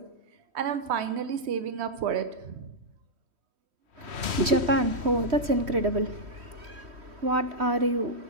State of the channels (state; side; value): late; left; 3.1 ms